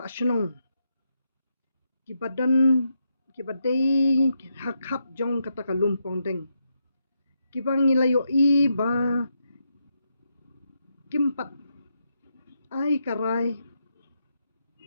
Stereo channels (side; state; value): both; inverted; correlation -0.82